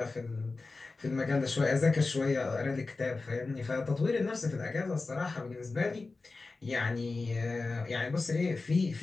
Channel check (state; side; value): quieter; right; 3.7 dB